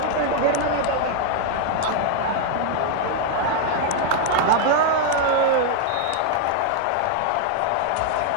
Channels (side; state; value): both; different; correlation 0.00